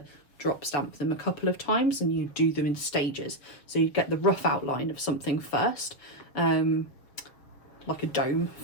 drop stamp them a couple of times, and you do them in stages. So you get the rough outline of something first, like a dome,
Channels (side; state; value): right; late; 6.7 ms